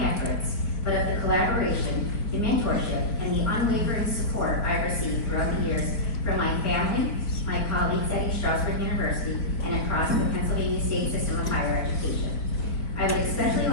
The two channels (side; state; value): right; late; 4.3 ms